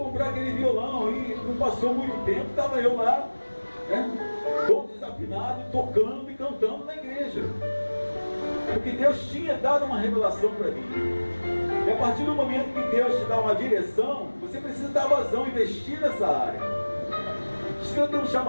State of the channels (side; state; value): both; inverted; correlation -1.00